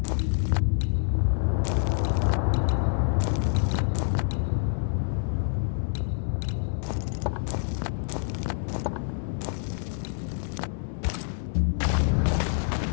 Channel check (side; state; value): right; silent; 60 dB below the other